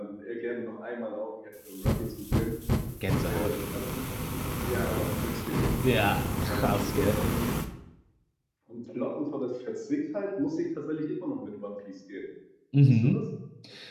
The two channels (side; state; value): both; identical; correlation 1.00